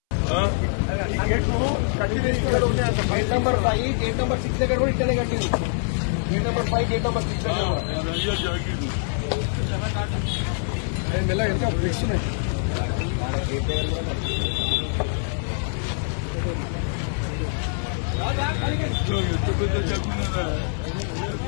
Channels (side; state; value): right; silent; 62 dB below the other